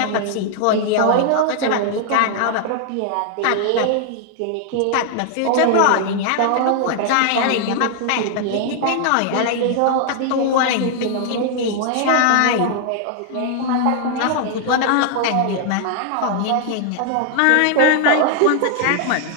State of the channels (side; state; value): both; different; correlation 0.00